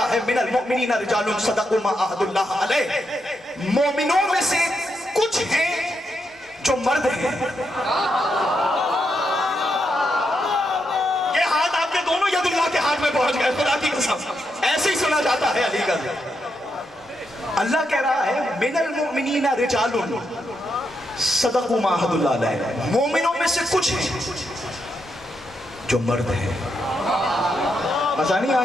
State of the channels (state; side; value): normal; both; correlation 0.82